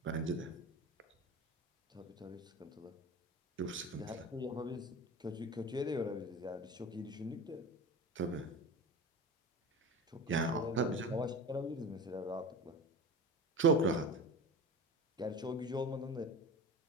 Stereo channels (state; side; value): normal; both; correlation 0.31